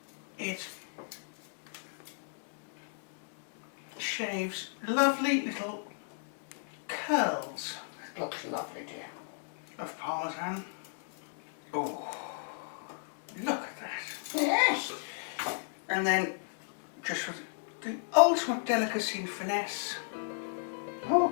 it shaves lovely little curls It looks lovely, dear. of Parmesan. Oh, look at that. Yes? And then, just with the ultimate delicacy and finesse, Oh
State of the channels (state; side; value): silent; right; digital silence